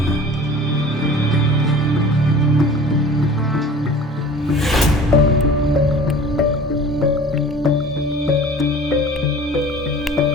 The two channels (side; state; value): both; normal; correlation 0.43